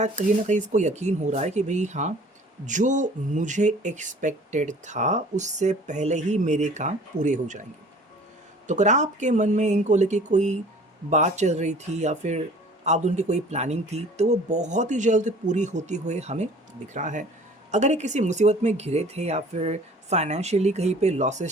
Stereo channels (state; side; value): normal; both; correlation 0.49